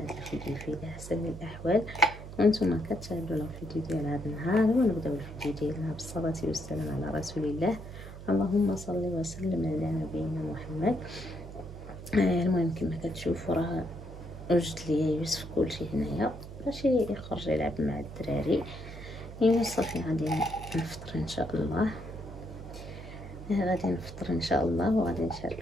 الفيديو في احسن الاحوال وانتم كتشاهدونا الفيديو ديال هذا النهار. ونبداو الفيديو ديالنا بالصلاه والسلام على رسول الله. اللهم صل وسلم على نبينا محمد. المهم كما كتشوفوا راه وجدت لي يوسف كلشي هنايا باش يخرج يلعب مع الدراري. صافي غادي نفطر ان شاء الله. وغادي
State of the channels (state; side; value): noise; right; hum, 13 dB below the sound